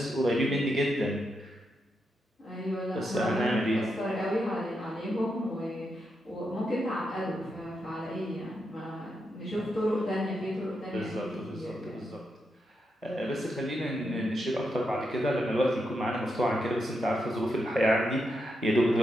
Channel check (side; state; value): both; normal; correlation 0.84